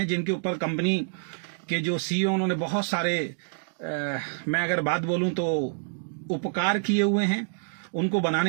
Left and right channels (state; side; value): silent; left; digital silence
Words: जिनके ऊपर कंपनी के जो सीईओ उन्होंने बहुत सारे मैं अगर बात बोलूं तो उपकार किए हुए हैं। उनको